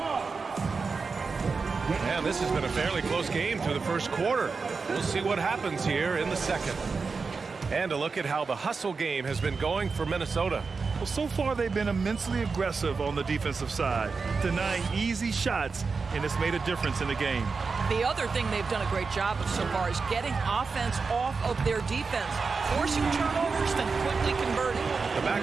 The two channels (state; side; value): quieter; left; 4.7 dB